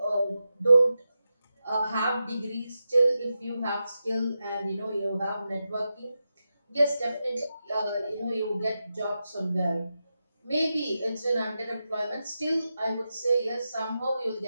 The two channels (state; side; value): inverted; both; correlation -0.90